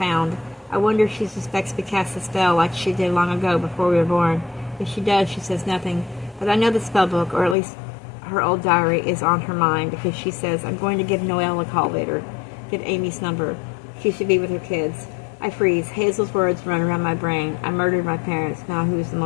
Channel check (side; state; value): right; drops out; at 7.6 s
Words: I wonder if she suspects we cast a spell like she did long ago before we were born. If she does, she says nothing. But I know the spellbook, or at least her old diary, is on her mind because she says, I'm going to give Noelle a call later. Get Amy's number. She should be with her kids. I freeze. Hazel's words run around my brain. I murdered my parents. Now who's the